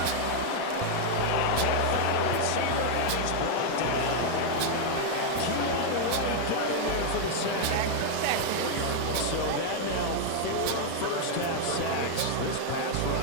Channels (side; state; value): both; different; correlation 0.00